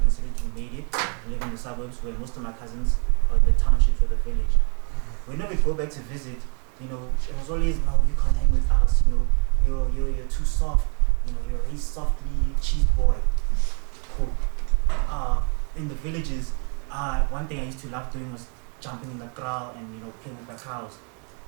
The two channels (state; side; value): quieter; left; 37.7 dB